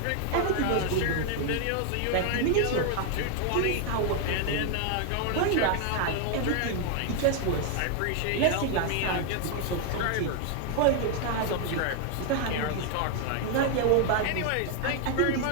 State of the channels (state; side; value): different; both; correlation 0.01